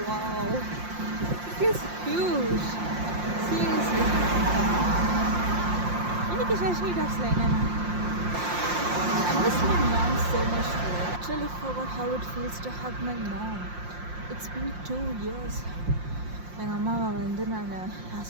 Wow, it is huge. Seriously. இன்னைக்கு ஷாஷினி டாக்ஸில் என்னென்னா I miss my mom so much. I actually forgot how it feels to hug my mom. It's been 2 years. எங்கள் அம்மாவை வந்து நான்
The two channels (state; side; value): late; left; 5.7 ms